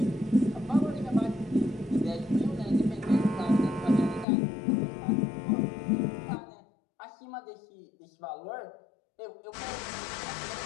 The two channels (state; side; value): drops out; right; at 4.2 s